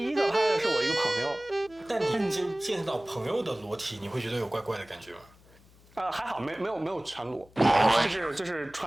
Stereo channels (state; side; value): noise; left; hum, 27 dB below the sound